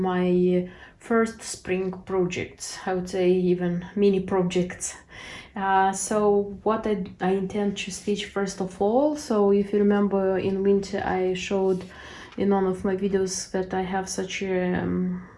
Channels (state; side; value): identical; both; correlation 1.00